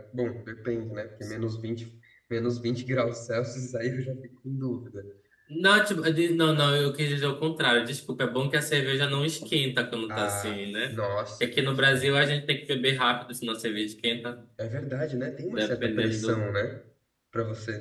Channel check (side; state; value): both; identical; correlation 1.00